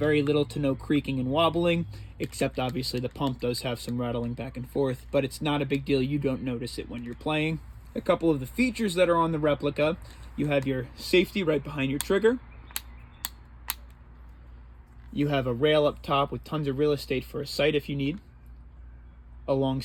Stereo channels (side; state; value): both; identical; correlation 1.00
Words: little to no creaking and wobbling, except obviously the pump does have some rattling back and forth, but it's not a big deal. You don't notice it when you're playing. A couple of the features that are on the replica: you have your safety right behind your trigger. You have a rail up top with tons of real estate for a sight if you need,